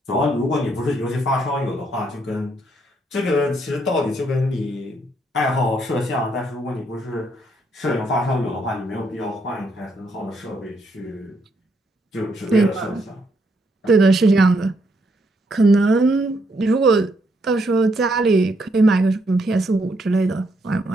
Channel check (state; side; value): normal; both; correlation 0.74